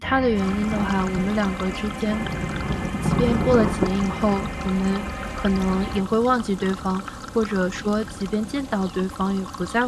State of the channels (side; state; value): both; identical; correlation 1.00